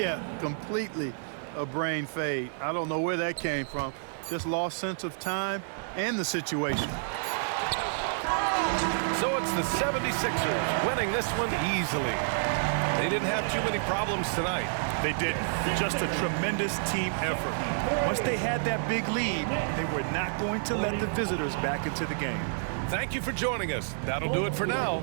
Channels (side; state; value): left; silent; 58 dB below the other